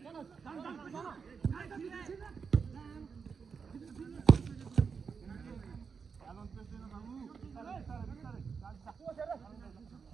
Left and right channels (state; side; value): quieter; left; 5.8 dB